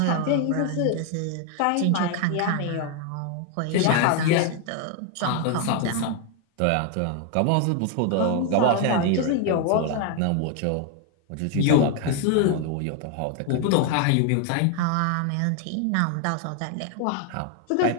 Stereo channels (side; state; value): both; different; correlation 0.00